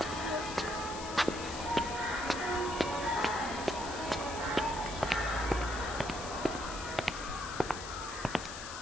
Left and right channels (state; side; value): noise; left; hiss, 10 dB below the sound